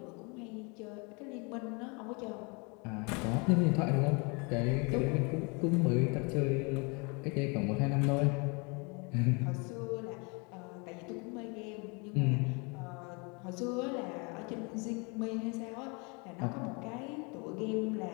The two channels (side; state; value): right; quieter; 31.2 dB